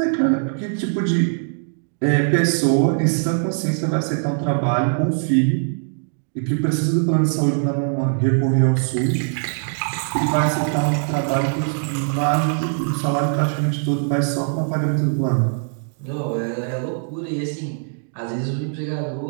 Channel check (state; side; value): silent; left; 65 dB below the other